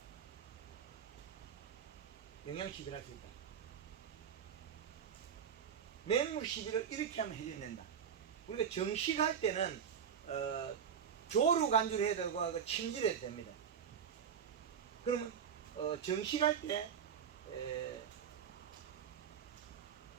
영양시비를 할 수 있다. 맹물 시비를 이렇게 하면 해줘야 된다. 우리가 정식할 때는 조루 간주를 해야 되고 침질을 해도 됩니다. 그러면 정식할 때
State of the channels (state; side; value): quieter; left; 7.9 dB